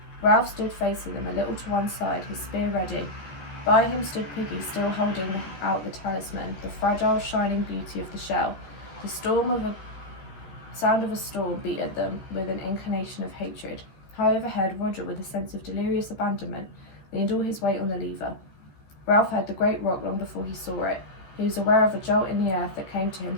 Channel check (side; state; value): right; late; 14 ms